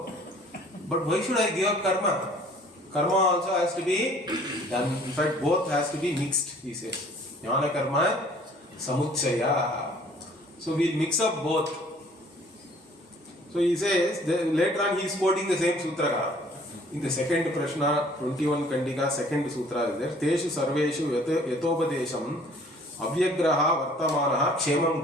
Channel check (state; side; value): normal; both; correlation 0.54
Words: But why should I give up karma? Karma also has to be done. In fact, both has to be mixed, he says. Jnana karma samuchaya. So we'll mix up both. So he says, later on he is quoting the same sutra. In the second Prashna, 21 Kandika, second sutra is there. Teshu sarveshu yatopadesham avyagraha vartamanaha kshemam